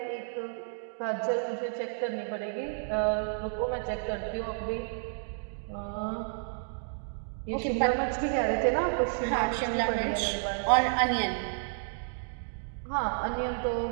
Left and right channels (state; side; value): silent; left; digital silence